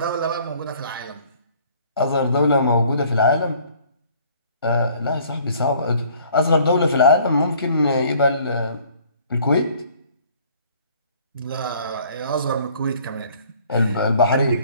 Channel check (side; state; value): both; inverted; correlation -0.56